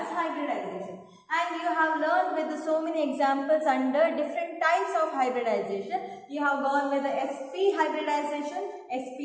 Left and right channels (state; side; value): identical; both; correlation 1.00